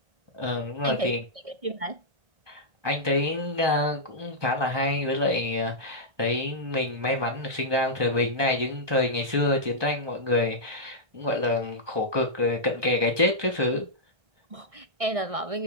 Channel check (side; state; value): left; late; 1.2 ms